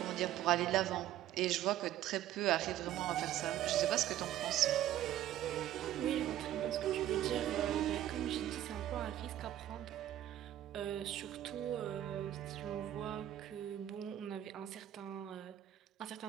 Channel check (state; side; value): quieter; left; 12.6 dB